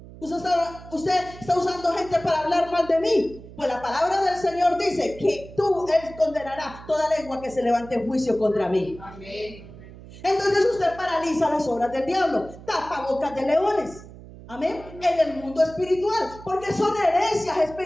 usted está usando gente para hablar mal de mí. Pues la palabra del Señor dice que él condenará toda lengua que se levante en juicio contra mí. Amén. Entonces usted paraliza las obras del diablo, tapa bocas de leones. Amén. En el mundo espiritual, porque son herencias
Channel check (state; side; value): noise; right; hum, 17 dB below the sound